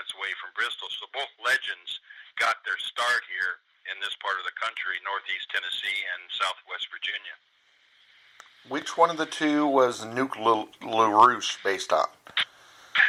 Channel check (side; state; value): both; identical; correlation 1.00